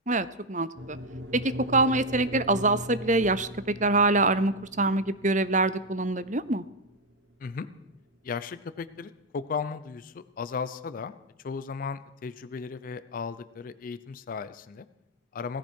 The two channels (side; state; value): both; normal; correlation 0.05